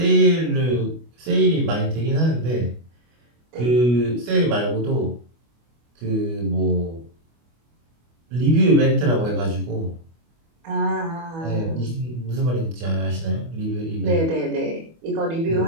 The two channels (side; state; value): left; late; 25 ms